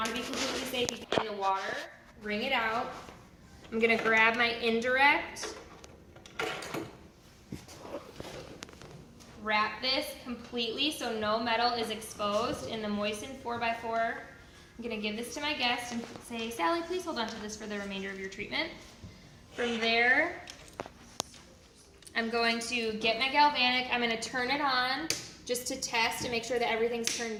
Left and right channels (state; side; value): identical; both; correlation 1.00